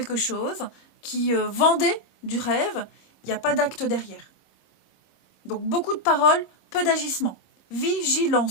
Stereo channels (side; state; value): right; late; 25 ms